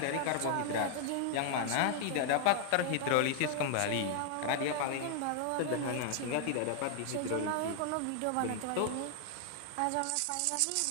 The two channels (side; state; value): both; different; correlation 0.00